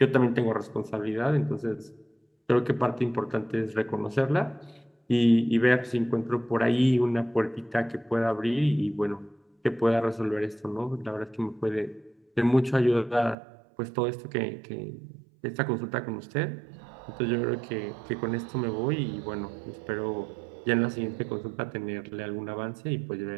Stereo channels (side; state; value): left; drops out; at 13.4 s